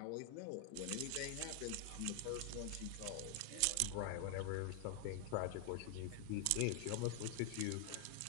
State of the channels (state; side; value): different; both; correlation 0.00